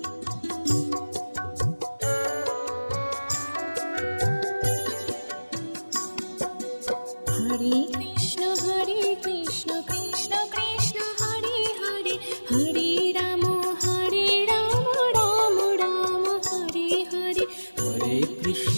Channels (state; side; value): inverted; both; correlation -1.00